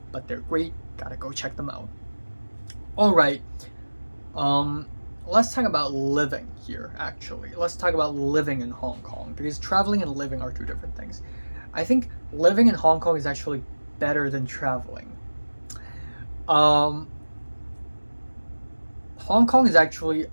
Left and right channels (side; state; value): both; inverted; correlation -1.00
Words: but they're great. Gotta go check them out. All right. let's talk about living here, actually. Let's talk about living in Hong Kong, because traveling and living are two different things. I think living in Hong Kong is actually better than traveling. Um, Hong Kong is actually